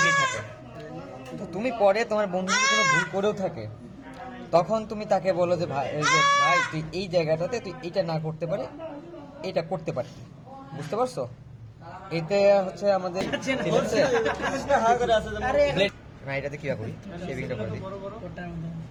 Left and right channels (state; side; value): identical; both; correlation 1.00